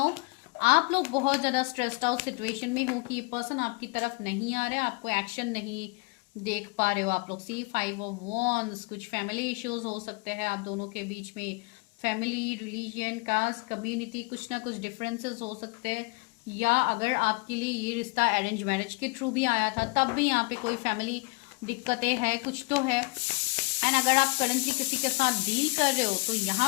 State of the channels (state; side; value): quieter; right; 28.6 dB